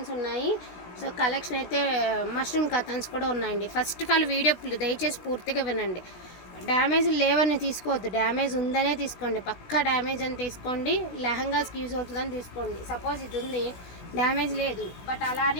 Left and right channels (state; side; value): late; right; 17 ms